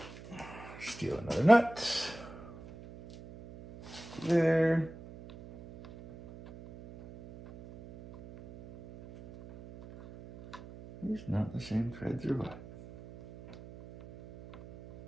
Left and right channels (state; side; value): noise; right; hum, 17 dB below the sound